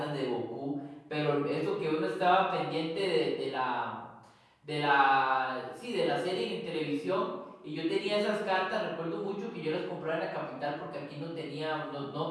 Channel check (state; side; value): identical; both; correlation 1.00